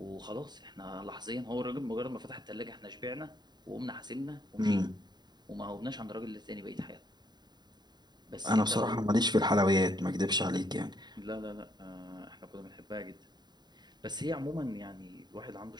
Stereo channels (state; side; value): late; left; 0.20 ms